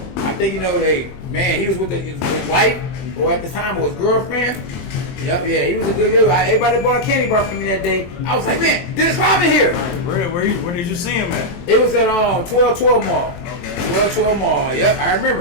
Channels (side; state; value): right; late; 23 ms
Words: I think, you know, he was with his wife, or at the time was girlfriend. Yep, yeah, he was a good dude. Everybody bought a candy bar for me that day. I was like, man, Dennis Rodman here. Where did you see him at? It was at 1212 Mall. Okay. 1212 Mall. Yep, I